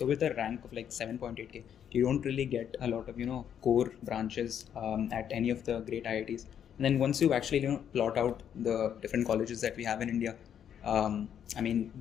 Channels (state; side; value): quieter; right; 9.0 dB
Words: rank of like 7.8k, you don't really get a lot of, core branches at any of the great IITs. And then once you actually, plot out the different colleges that we have in India,